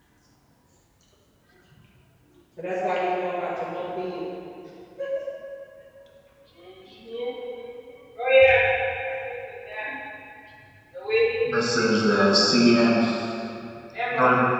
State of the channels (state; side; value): identical; both; correlation 1.00